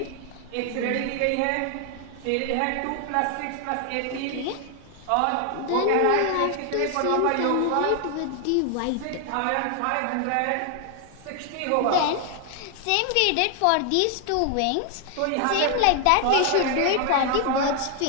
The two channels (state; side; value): different; both; correlation 0.00